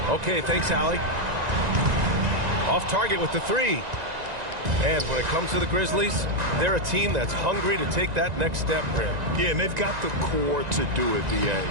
Okay, thanks, Allie. Off target with the three. And when it comes to the Grizzlies, they're a team that's hungry to take that next step, Brent. Yeah, and they've got the core to do it, B.A.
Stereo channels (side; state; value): left; late; 1.9 ms